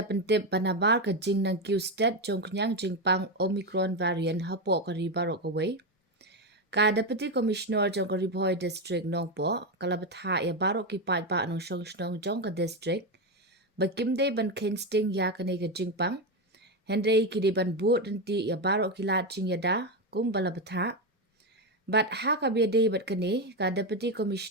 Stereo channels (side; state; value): both; normal; correlation 0.11